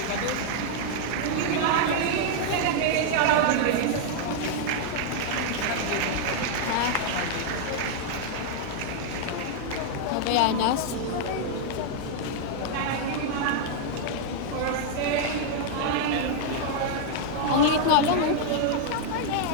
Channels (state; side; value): different; both; correlation -0.01